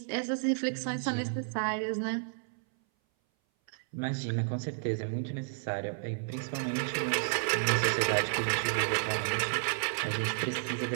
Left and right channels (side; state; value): left; silent; 57 dB below the other